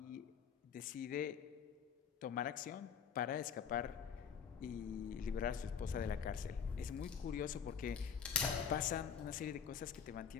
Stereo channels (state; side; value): quieter; right; 7.2 dB